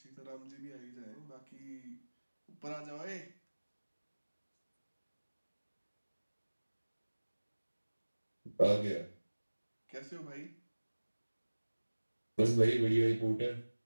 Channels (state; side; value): inverted; both; correlation -1.00